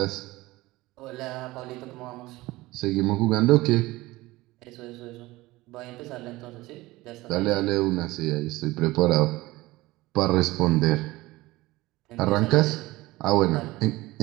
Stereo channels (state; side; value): quieter; left; 19.4 dB